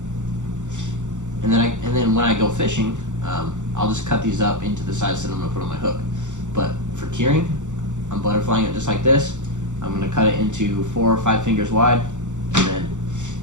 And then when I go fishing, I'll just cut these up into the size that I'm gonna put on my hook. But for curing, I'm butterflying it just like this. I'm gonna cut it into 4 or 5 fingers wide, and then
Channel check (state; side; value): late; left; 0.85 ms